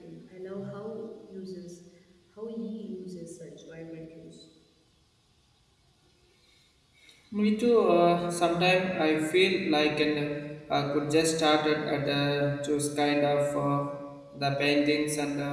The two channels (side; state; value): both; identical; correlation 1.00